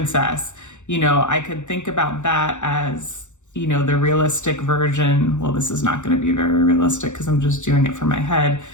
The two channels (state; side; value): late; right; 0.84 ms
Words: I could think about that as, the realistic version. Well, this is not going to be very realistic because I'm just doing it for my head,